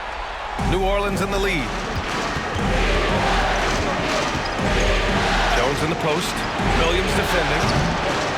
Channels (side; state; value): both; identical; correlation 1.00